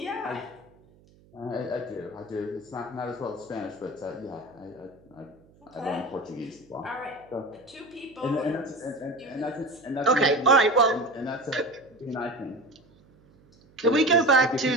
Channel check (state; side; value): noise; right; hum, 28 dB below the sound